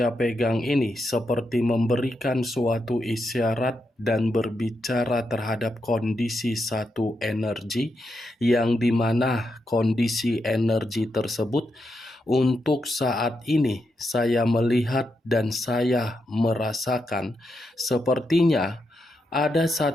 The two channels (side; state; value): both; normal; correlation 0.84